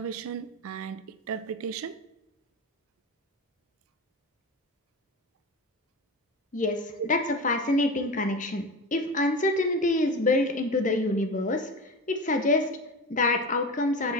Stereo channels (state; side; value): normal; both; correlation 0.26